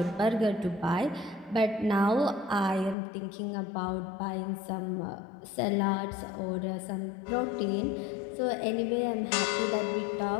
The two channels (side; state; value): right; drops out; at 3.0 s